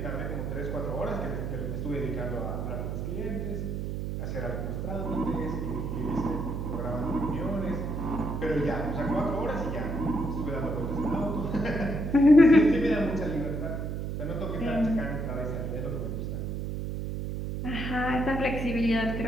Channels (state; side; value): noise; right; hum, 3 dB below the sound